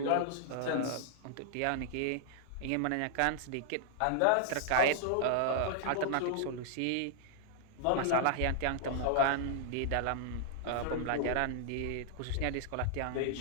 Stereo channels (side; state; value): both; different; correlation -0.01